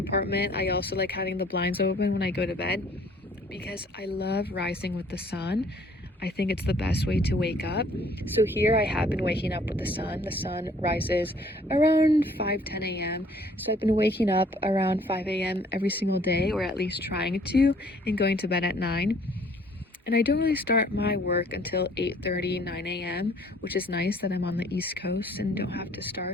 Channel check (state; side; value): normal; both; correlation 0.58